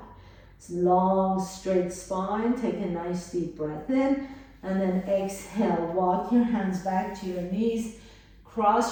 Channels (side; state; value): both; identical; correlation 1.00